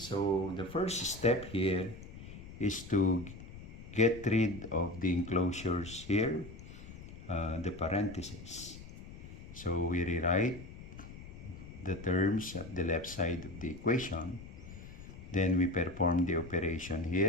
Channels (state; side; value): noise; left; rumble, 14 dB below the sound